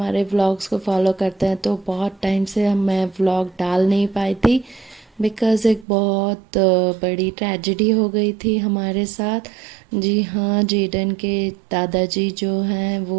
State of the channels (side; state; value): left; drops out; at 5.9 s